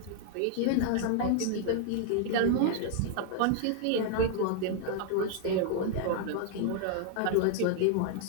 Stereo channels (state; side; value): different; both; correlation -0.01